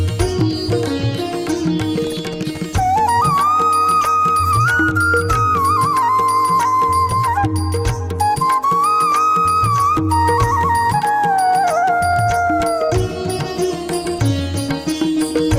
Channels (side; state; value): both; identical; correlation 1.00